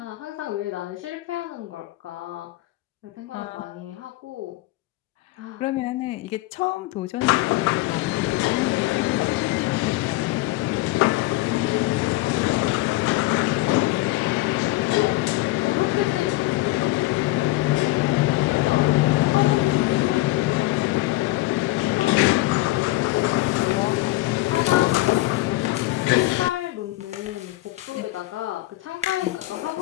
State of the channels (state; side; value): quieter; right; 18.9 dB